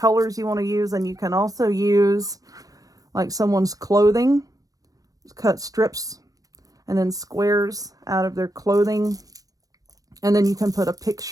you want to use. And you can also use like someone's clothing, cut strips and then squares out of their clothing. And then you can put a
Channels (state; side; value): late; left; 0.17 ms